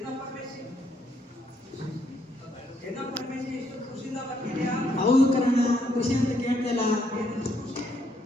ಹೌದು ಕಣ, ಖುಷಿ ಅಂತ ಕೇಳ್ತಿಲ್ಲ.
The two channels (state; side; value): normal; both; correlation 0.73